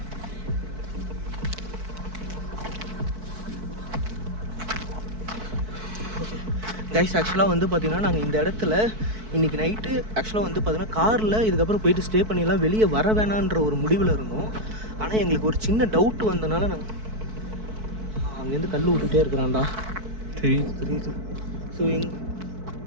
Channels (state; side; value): late; left; 4.6 ms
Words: கைஸ் ஆக்சுவலாக வந்து பார்த்தீங்கன்னா நாங்கள் இந்த இடத்துல இன்றைக்கி நைட்டு ஆக்சுவலாக வந்து பார்த்தீங்கன்னா காரில் இதுக்கப்புறம் போயிட்டு ஸ்டே பண்ணிடலாம், வெளியே வர வேணான்ற ஒரு முடிவில் இருந்தோம். ஆனால் எங்களுக்கு ஒரு சின்ன டவுட் வந்தனால நாங்கள் அங்கேருந்து கல் விட்டுட்டே இருக்கிறான்டா. தெரியுது தெரியுது. ஸோ